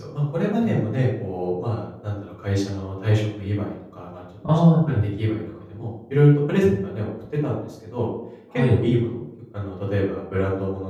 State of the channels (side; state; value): both; identical; correlation 1.00